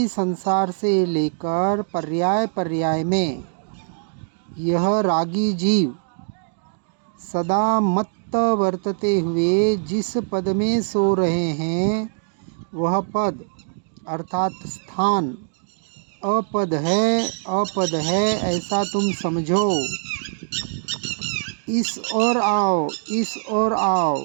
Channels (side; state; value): left; silent; digital silence